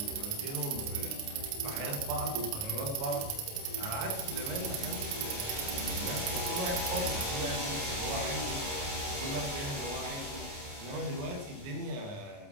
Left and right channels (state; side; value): late; left; 29 ms